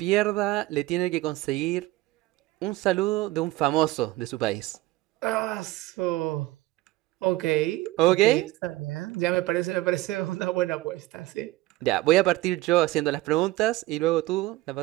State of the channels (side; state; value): left; quieter; 18.0 dB